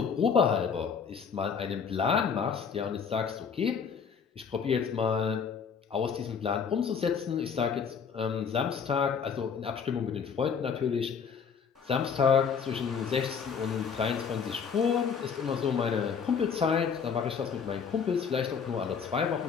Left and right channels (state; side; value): quieter; right; 6.5 dB